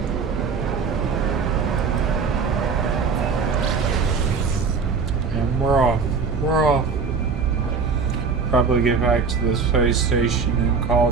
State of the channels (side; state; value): left; quieter; 5.2 dB